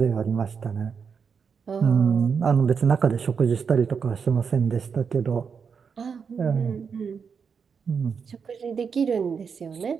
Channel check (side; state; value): left; quieter; 6.2 dB